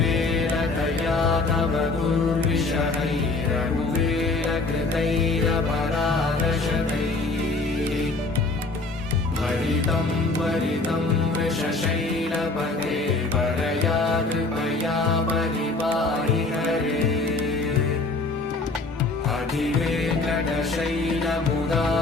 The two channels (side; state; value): right; quieter; 3.4 dB